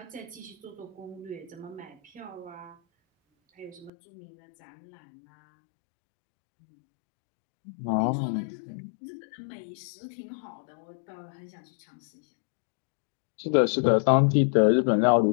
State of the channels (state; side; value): drops out; right; at 3.9 s